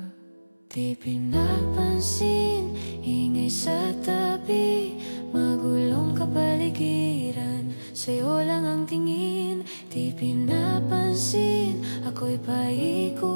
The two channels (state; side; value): inverted; both; correlation -1.00